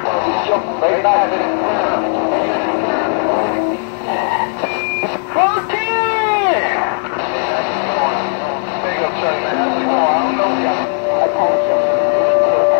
Jump right back in it. 14! Big up, Chuck, man. How's it going? I don't know you. Attention,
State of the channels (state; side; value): silent; right; 56 dB below the other